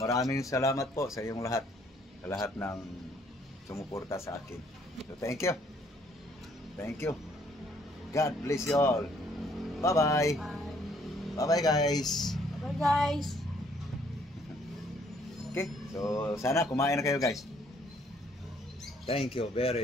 salamat po sa inyong lahat, sa lahat ng sumuporta sa akin. So thank you. Thank you. God bless you all. Bye-bye. Bye-bye guys. Bye guys. Okay, so sana kumain na kayo guys. Thank you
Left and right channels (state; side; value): normal; both; correlation 0.64